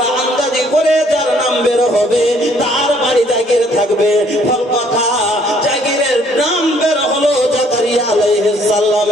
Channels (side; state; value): both; normal; correlation 0.63